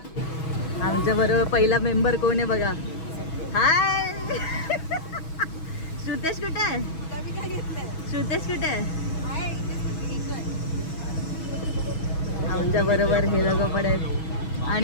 आमच्या बरोबर पहिला मेंबर कोण आहे बघा. हाय श्रुतेश कुठे आहे? श्रुतेश कुठे आहे? आमच्या बरोबर हे लोक पण आहेत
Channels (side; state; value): right; late; 6.2 ms